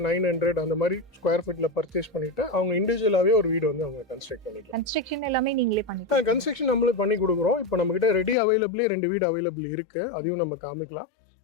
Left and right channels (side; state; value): right; drops out; at 8.3 s